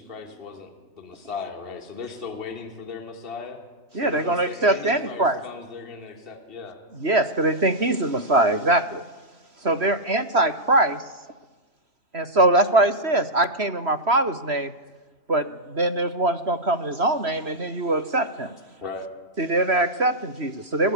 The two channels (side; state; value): left; late; 3.1 ms